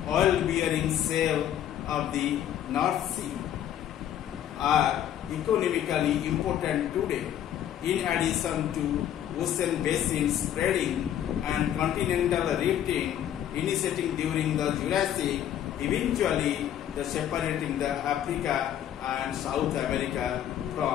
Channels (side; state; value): right; quieter; 10.7 dB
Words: oil-bearing shale of the North Sea, are economically important today, in addition to ocean basins spreading and continental rifting initiating during the Jurassic, eventually separating the Africa and South America